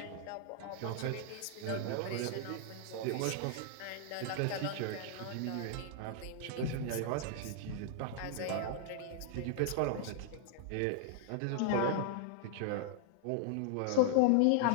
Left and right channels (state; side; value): different; both; correlation 0.00